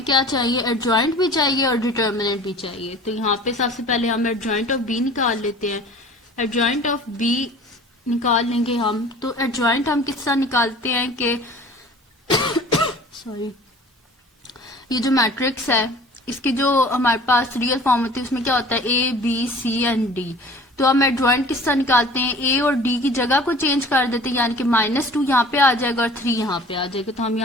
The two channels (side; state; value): both; normal; correlation 0.45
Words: क्या चाहिए, एडजॉइंट भी चाहिए और डिटर्मिनेंट भी चाहिए। तो यहाँ पे सबसे पहले हम एडजॉइंट ऑफ बी निकाल लेते हैं। एडजॉइंट ऑफ बी निकाल लेंगे हम, तो एडजॉइंट हम किस तरह निकालते हैं कि सॉरी, ये जो मैट्रिक्स है इसकी जो हमारे पास रियल फॉर्म होती है उसमें क्या होता है, a b c and d. तो हम एडजॉइंट किस तरह निकालते हैं, ए और डी की जगह को चेंज कर देते हैं, यानी कि -2 यहाँ पे आ जाएगा और 3 यहाँ पे आ जाएगा। तो हम